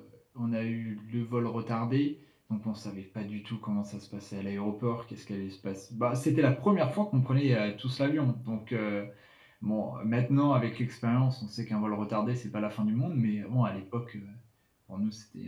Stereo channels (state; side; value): identical; both; correlation 1.00